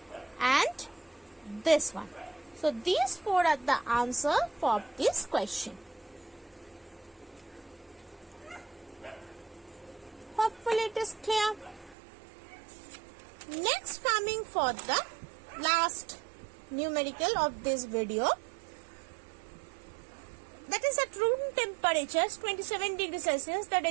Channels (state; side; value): drops out; left; at 12.0 s